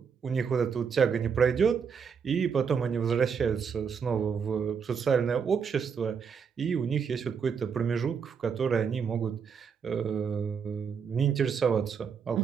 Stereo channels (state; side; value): quieter; left; 6.4 dB